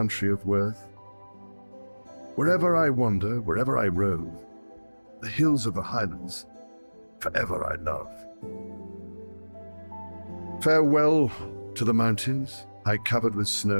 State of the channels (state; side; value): inverted; both; correlation -1.00